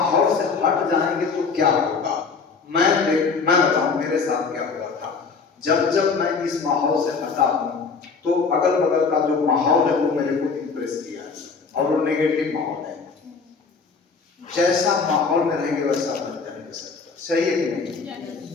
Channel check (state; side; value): quieter; right; 5.0 dB